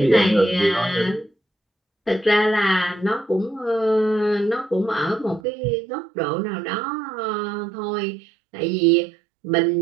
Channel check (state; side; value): drops out; left; at 5.4 s